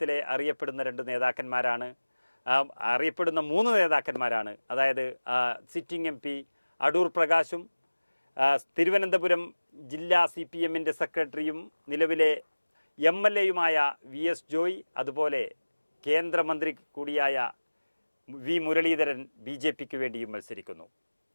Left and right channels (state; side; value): inverted; both; correlation -1.00